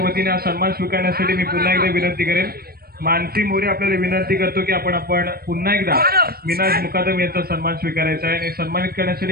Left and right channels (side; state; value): left; late; 0.44 ms